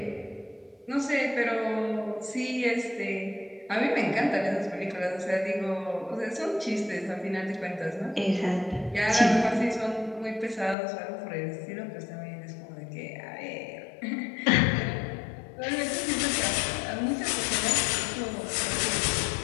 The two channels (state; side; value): drops out; right; at 10.8 s